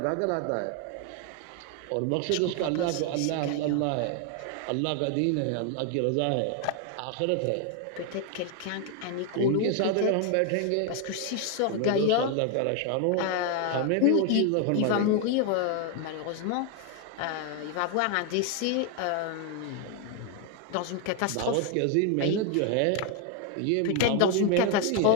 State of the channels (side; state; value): both; different; correlation 0.01